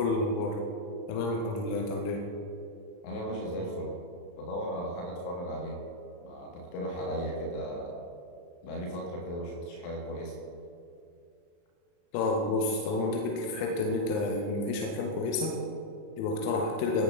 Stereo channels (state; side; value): late; right; 35 ms